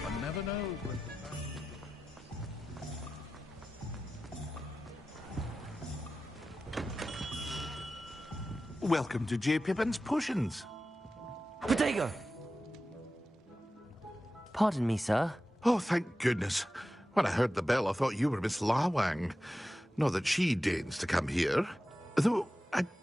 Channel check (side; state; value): both; normal; correlation 0.93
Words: One never knows when to Welcome to J. Pippin's Potions. Protego! Pardon me, sir. Oh, thank goodness. When I heard the bell, I thought you were Miss Lawang. Not that she deigns to come here. Though, I